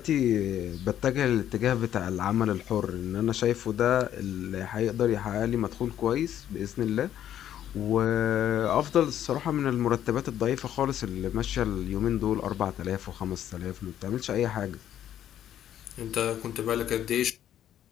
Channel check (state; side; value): quieter; right; 10.9 dB